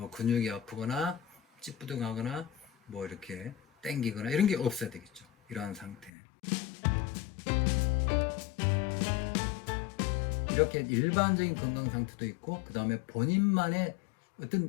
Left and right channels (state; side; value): drops out; right; at 6.1 s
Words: 근육이 아프거나 찌뿌둥하거나 이렇게 땡기거나 이런 게 없어야 되겠죠. 이러한 상태. 이렇게 일반적인 건강 상태도 있고, 그 다음에 본인만의